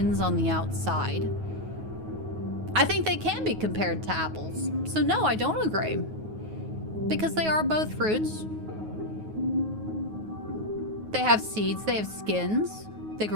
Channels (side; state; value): left; late; 9.4 ms